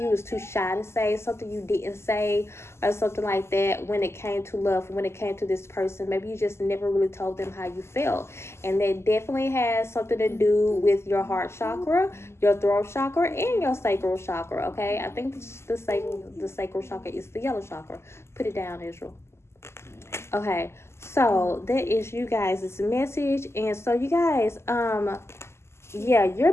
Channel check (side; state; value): right; late; 0.13 ms